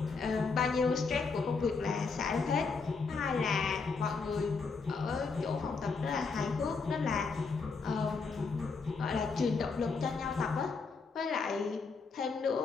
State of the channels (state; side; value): quieter; right; 4.7 dB